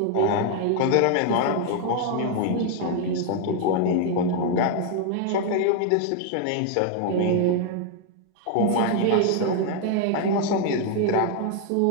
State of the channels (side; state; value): both; different; correlation 0.00